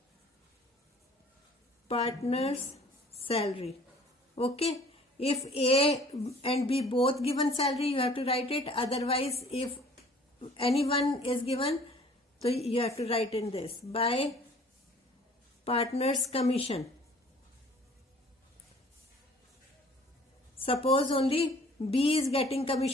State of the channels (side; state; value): both; normal; correlation 0.52